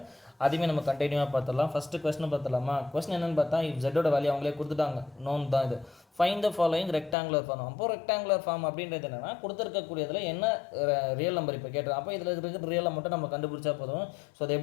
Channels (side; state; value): right; drops out; at 7.2 s